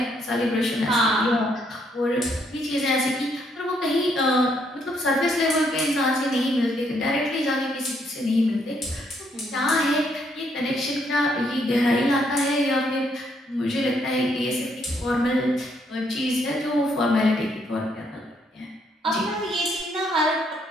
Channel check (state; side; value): normal; both; correlation 0.72